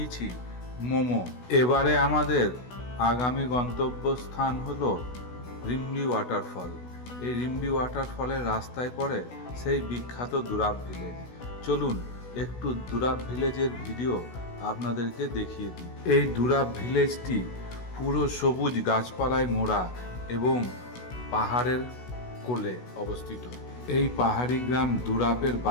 মোমো। এবারে আমাদের আগামী গন্তব্যস্থান হলো রিম্বি ওয়াটারফল। এই রিম্বি ওয়াটারফলের রাস্তায় পড়ে সেই বিখ্যাত দুরাব ভিলেজ। চলুন একটু দুরাব ভিলেজের ভিডিও আপনাদেরকে দেখিয়ে দিই। এই দুরাব ভিলেজটি পুরো সবুজ গাছপালায় মোড়া এবং পাহাড়ের কোলে অবস্থিত। এই পাহাড়ি গ্রাম দুরাপের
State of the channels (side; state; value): right; late; 16 ms